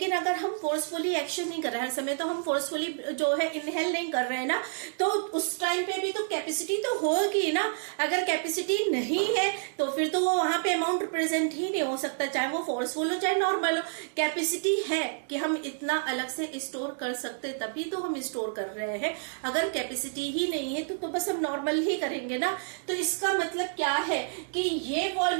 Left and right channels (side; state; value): left; silent; digital silence